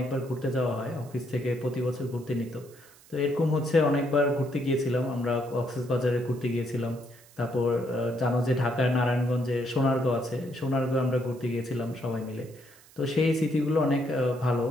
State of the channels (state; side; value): noise; right; hiss, 25 dB below the sound